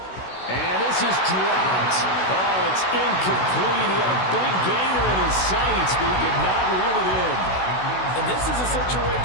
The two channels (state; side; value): late; right; 16 ms